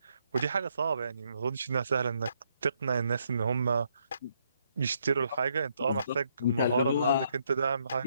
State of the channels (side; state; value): both; inverted; correlation -0.74